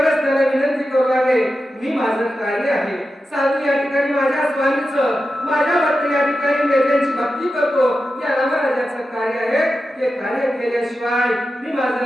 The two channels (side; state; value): both; normal; correlation 0.91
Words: त्याला विनंती करू लागले मी माझं कार्य आहे साधू या ठिकाणी माझ्या स्वामीचं माझ्या भक्त या ठिकाणी त्यांची भक्ती करतो या रामराजाचं कार्य आहे ते कार्य केल्याशिवाय मी